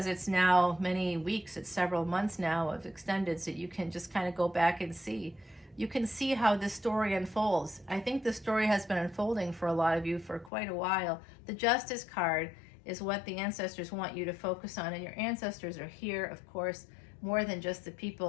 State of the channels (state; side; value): drops out; right; at 10.5 s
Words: it's now many weeks, it's several months now of extendeds that you can just kind of go back and see. You can see how this story unfolds. I think the story has been unfolding for a lot of you for quite a while. The Justice card is what the ancestors want you to focus on, and your ancestors are here, of course, more than just the